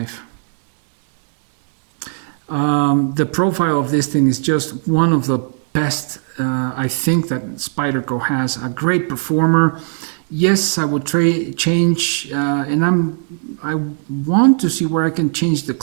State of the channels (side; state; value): left; silent; digital silence